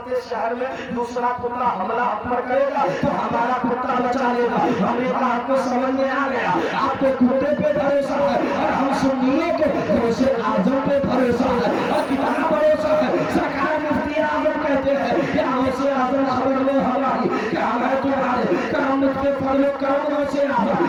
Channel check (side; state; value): both; identical; correlation 1.00